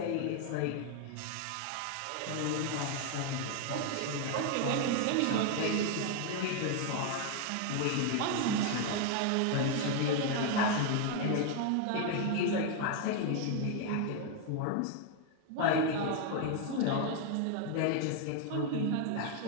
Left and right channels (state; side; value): different; both; correlation 0.01